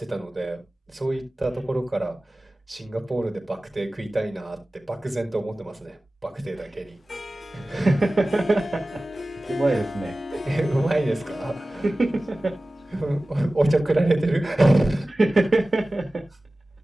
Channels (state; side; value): normal; both; correlation 0.97